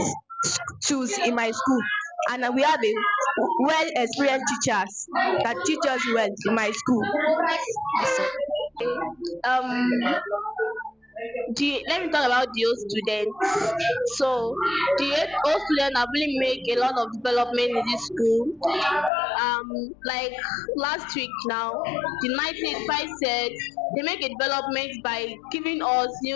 tools in my school, and we have a well experienced teachers that teach us well in my school. Um, let me talk about the old students. So the old students have really make a lot of development in this school. Like last week now, the 1985 said they make a development by giving us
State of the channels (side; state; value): right; drops out; at 19.1 s